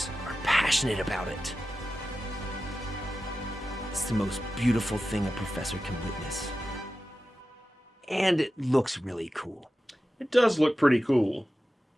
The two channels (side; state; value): both; normal; correlation 0.93